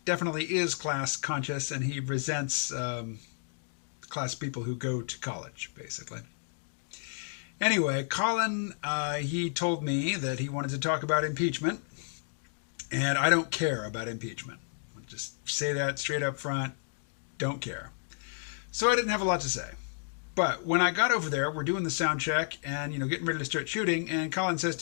definitely is class conscious, and he resents class people who go to college, basically. Anyway, Colin, he told me that he wanted to talk about impeachment, and I don't care about impeachment. I'll just say that straight up front, don't care. So I didn't have a lot to say. But when I got over there, we're doing the sound check and, getting ready to start shooting, and Colin says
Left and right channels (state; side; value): silent; right; digital silence